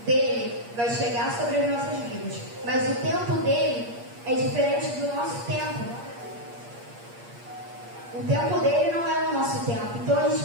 dele vai chegar sobre as nossas vidas. Mas o tempo dele é diferente do nosso tempo. O tempo dele não é o nosso tempo. Então a gente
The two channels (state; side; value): late; left; 8.5 ms